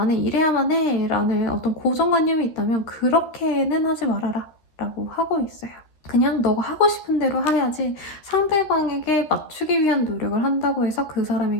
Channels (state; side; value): late; right; 13 ms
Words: 이래야만 해 라는 어떤 고정관념이 있다면 그렇게는 하지 말아라 라고 하고 있어요. 그냥 너가 하고 싶은 대로 해야지 상대방에게 맞추기 위한 노력을 한다고 해서 그